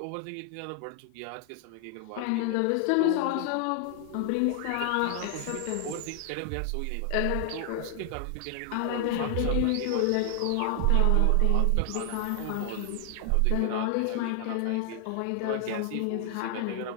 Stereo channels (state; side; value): different; both; correlation 0.00